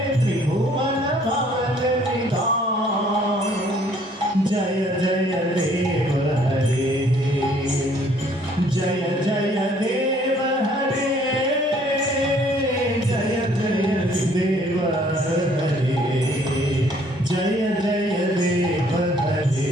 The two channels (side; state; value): both; normal; correlation 0.60